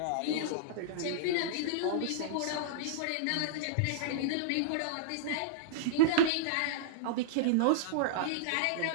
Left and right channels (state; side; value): different; both; correlation -0.02